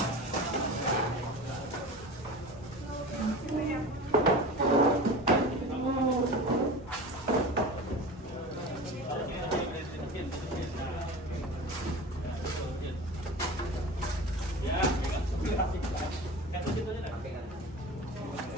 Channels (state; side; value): normal; both; correlation 0.33